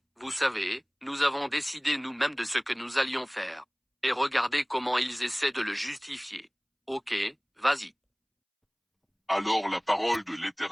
vous savez, nous avons décidé nous-mêmes de ce que nous allions faire. Et regardez comment ils essaient de le justifier. Ok, vas-y. Alors la parole de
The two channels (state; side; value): identical; both; correlation 1.00